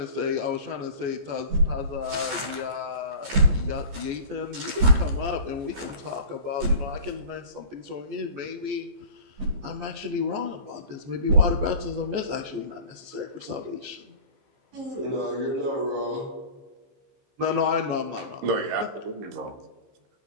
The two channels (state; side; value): late; left; 15 ms